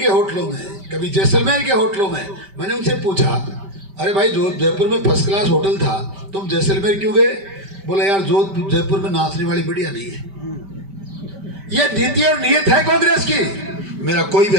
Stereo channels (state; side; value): late; left; 5.1 ms